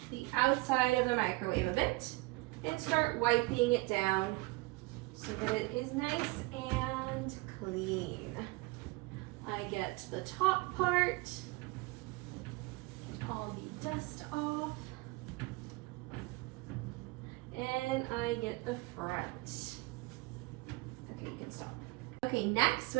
the outside of the microwave a bit and start wiping it down so that it is nice and clean. I get the top part, get all the dust off, and I get the front. Okay, you can stop. Okay, next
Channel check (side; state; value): left; quieter; 23.4 dB